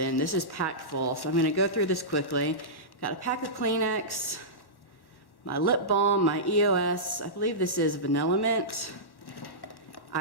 This is packed full, so I'm gonna go through this quickly. Got a pack of Kleenex, my lip balm, my EOS, I believe this is Vanilla Mint.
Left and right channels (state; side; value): late; right; 1.1 ms